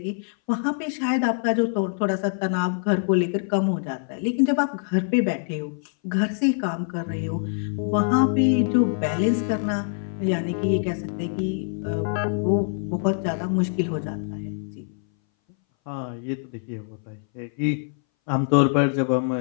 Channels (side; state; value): right; silent; 60 dB below the other